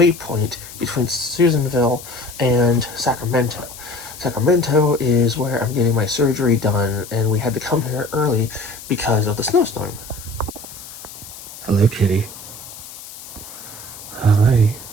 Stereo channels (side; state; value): left; noise; hiss, 15 dB below the sound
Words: between Susanville and Sacramento. Sacramento is where I'm getting my surgery done, and we had to come here early because of the snowstorm. Hello, kitty. Hi.